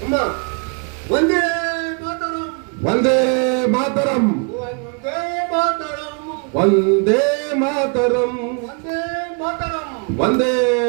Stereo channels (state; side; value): quieter; left; 35.5 dB